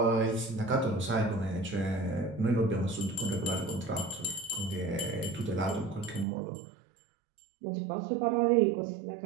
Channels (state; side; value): drops out; left; at 6.2 s